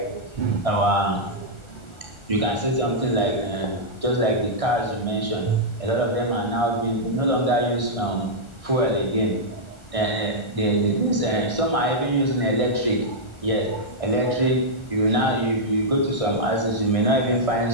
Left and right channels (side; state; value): right; late; 1.4 ms